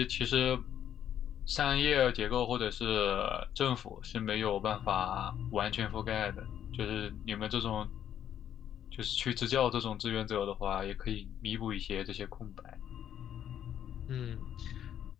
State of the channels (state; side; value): quieter; right; 10.1 dB